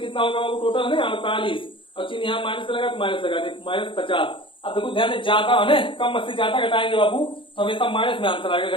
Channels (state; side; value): late; right; 0.25 ms